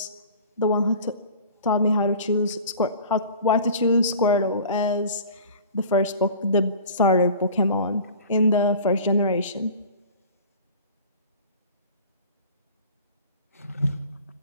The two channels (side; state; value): both; inverted; correlation -0.42